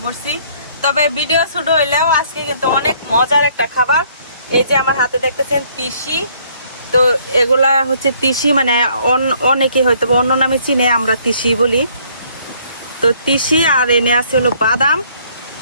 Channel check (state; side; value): inverted; both; correlation -0.63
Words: পড়ছি। তবে ভিডিও ছোট হইলেও আজকে কিন্তু অনেক মজার একটা খাবার। এই যে আমার হাতে দেখতেছেন তিসি, তো এগুলা হচ্ছে তিসি, মানে অনেকে হয়তো অন্য নামে চিনে, আমরা তিসি বলি। তো তিসি আর এনে আছে হলো বাদাম।